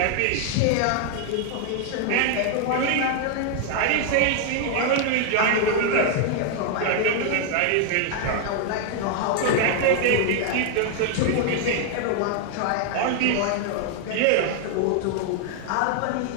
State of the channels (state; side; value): different; both; correlation 0.00